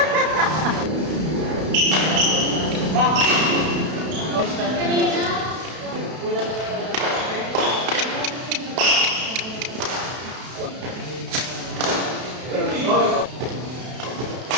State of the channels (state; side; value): late; left; 32 ms